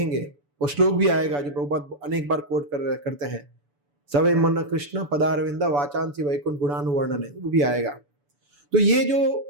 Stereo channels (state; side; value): late; left; 7.0 ms